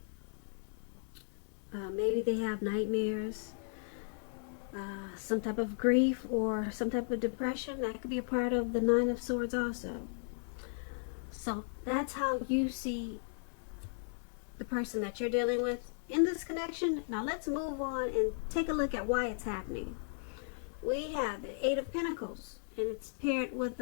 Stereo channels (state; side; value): silent; right; digital silence